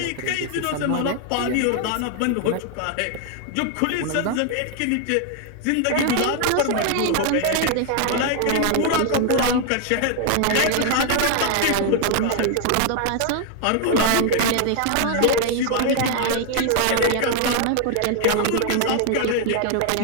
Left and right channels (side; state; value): both; different; correlation 0.01